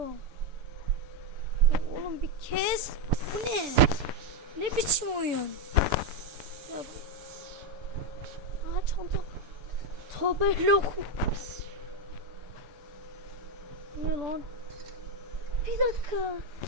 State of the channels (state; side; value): late; left; 6.9 ms